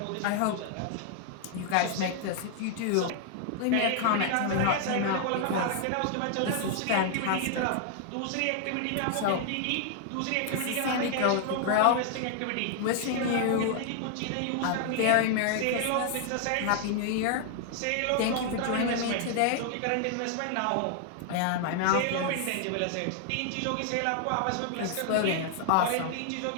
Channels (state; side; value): different; both; correlation 0.00